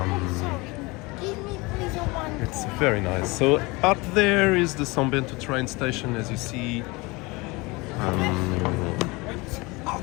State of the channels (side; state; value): right; quieter; 24.5 dB